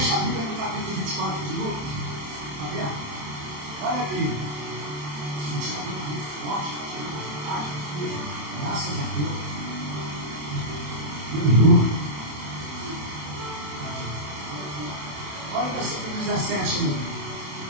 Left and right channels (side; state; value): left; late; 27 ms